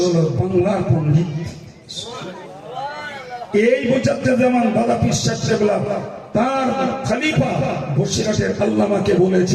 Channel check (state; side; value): identical; both; correlation 1.00